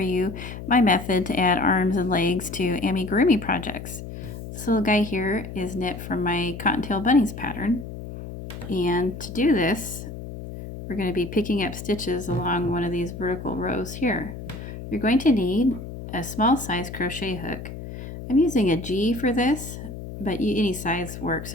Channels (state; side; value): noise; left; hum, 10 dB below the sound